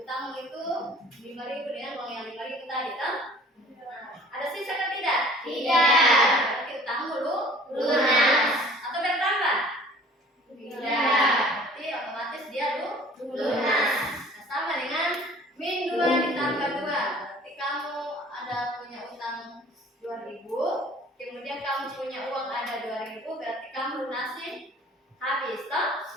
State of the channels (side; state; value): both; normal; correlation 0.49